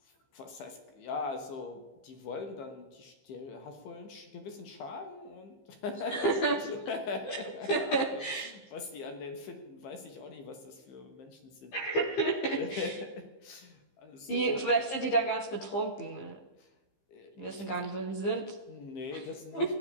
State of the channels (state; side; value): late; right; 15 ms